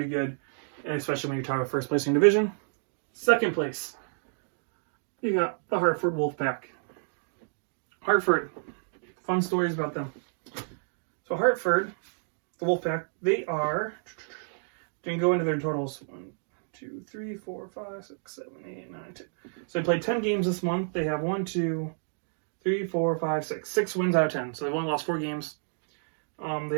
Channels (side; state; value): left; silent; digital silence